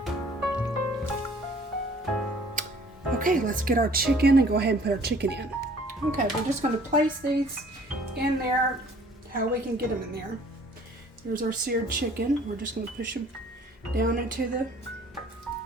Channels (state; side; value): normal; both; correlation 0.55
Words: Okay, let's get our chicken and go ahead and put our chicken in. Okay, we're just going to place these in there how we can get them in there. Here's our seared chicken. We're just going to push them down into the